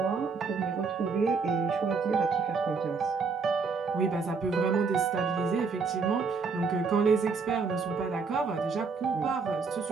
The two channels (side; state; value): left; quieter; 4.9 dB